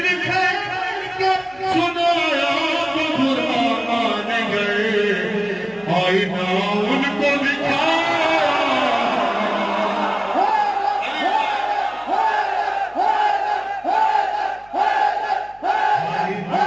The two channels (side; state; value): right; noise; hum, 28 dB below the sound